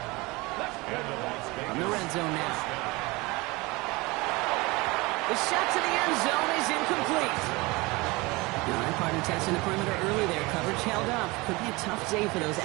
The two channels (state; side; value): quieter; left; 23.7 dB